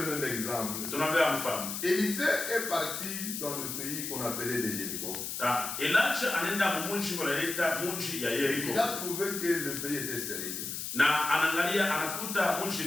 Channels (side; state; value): left; noise; hiss, 5 dB below the sound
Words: l'exemple. Élisée est parti dans le pays qu'on appelait des Jéricho. Il a trouvé que le pays était stérile.